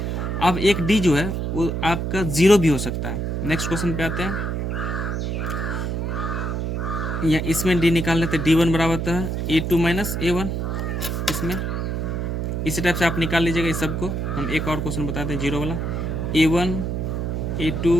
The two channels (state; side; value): noise; right; hum, 1 dB below the sound